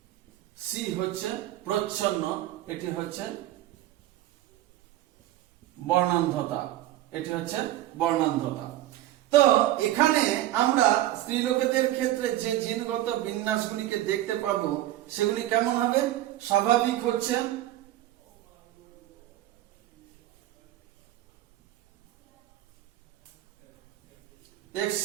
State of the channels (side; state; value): left; quieter; 14.4 dB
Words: সি হচ্ছে প্রচ্ছন্ন, এটি হচ্ছে বর্ণান্ধতা, এটি হচ্ছে বর্ণান্ধতা। তো এখানে আমরা স্ত্রীলোকেদের ক্ষেত্রে যে জিনগত বিন্যাসগুলিকে দেখতে পাবো সেগুলি কেমন হবে? স্বাভাবিক হচ্ছে